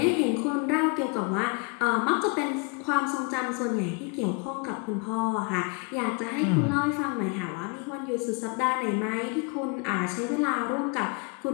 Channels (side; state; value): right; quieter; 32.2 dB